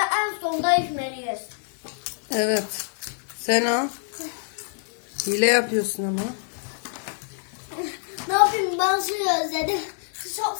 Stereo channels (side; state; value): right; silent; digital silence